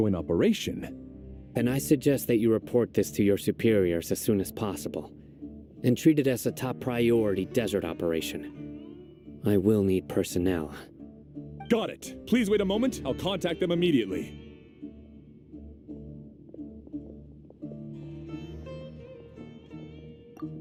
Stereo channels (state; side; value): identical; both; correlation 1.00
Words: operation. And I suggest that you report this to your superiors as soon as possible, and treat it as a top priority desert operation. I will need personnel. Got it. Please wait a moment. I'll contact them immediately.